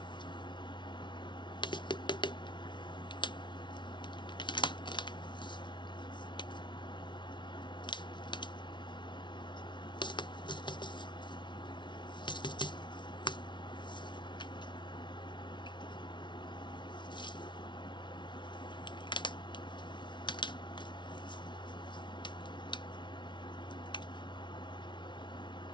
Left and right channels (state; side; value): late; right; 0.23 ms